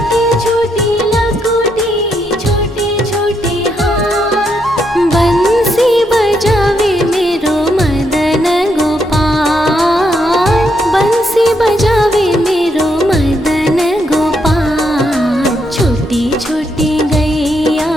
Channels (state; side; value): normal; both; correlation 0.78